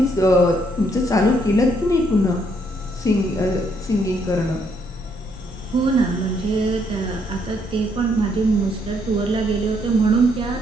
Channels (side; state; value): both; normal; correlation 0.71